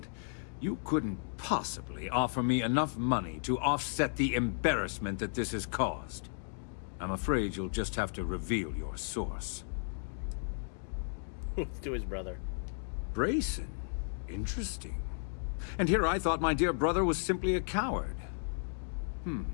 you couldn't possibly offer me enough money to offset the embarrassment that this has caused. I'm afraid you'll just have to reveal your source. Let's do his brother. Brayson? Interesting. And here I thought my dear brother was simply a coward.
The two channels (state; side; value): silent; right; digital silence